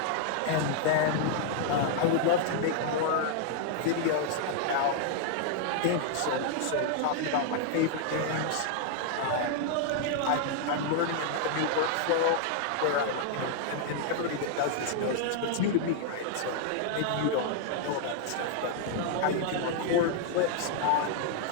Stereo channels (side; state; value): both; different; correlation 0.00